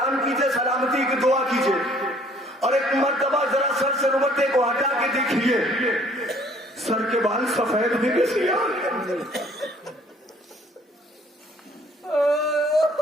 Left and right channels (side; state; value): both; normal; correlation 0.58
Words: کیجئے، سلامتی کی دعا کیجئے، اور ایک مرتبہ ذرا سر سے رومتے کو ہٹا کے دیکھیے، سر کے بال سفید بھی کیسے آئے،